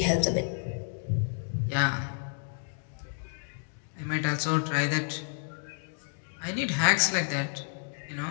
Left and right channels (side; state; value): right; silent; digital silence